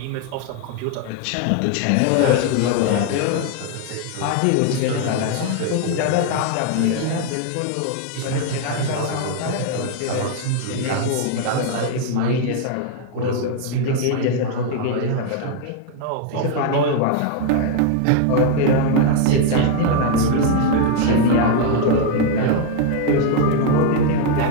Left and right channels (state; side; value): different; both; correlation 0.00